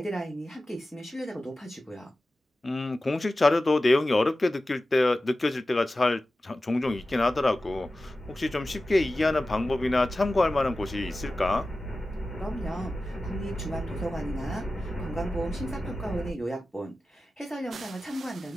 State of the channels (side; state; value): both; normal; correlation 0.95